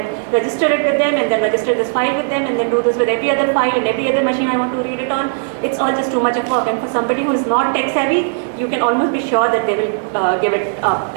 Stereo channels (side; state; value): left; silent; digital silence